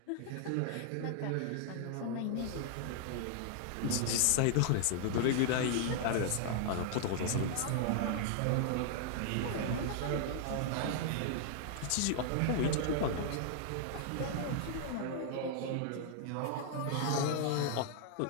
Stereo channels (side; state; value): both; different; correlation -0.01